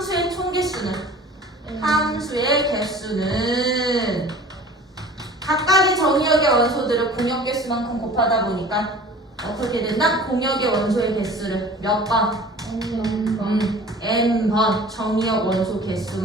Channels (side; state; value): both; normal; correlation 0.44